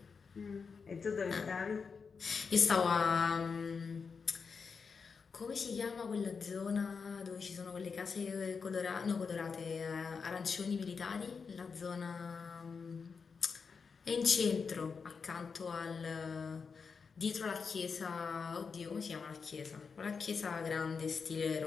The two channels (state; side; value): quieter; right; 5.4 dB